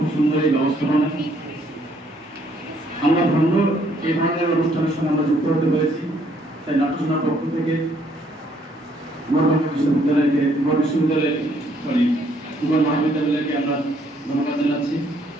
সুন্দর এই ব্যবস্থাপনা। আমরা ধন্য এই ধরনের অনুষ্ঠানের সঙ্গে আমরা যুক্ত হতে পেরেছি। তাই নাট্যসেনার পক্ষ থেকে মহাবিদ্যালয়কে আমরা ধন্যবাদ জানাচ্ছি।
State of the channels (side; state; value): both; normal; correlation 0.67